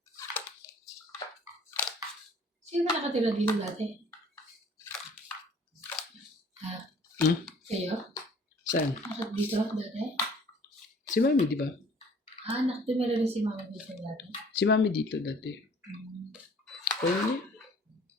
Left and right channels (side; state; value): both; normal; correlation 0.53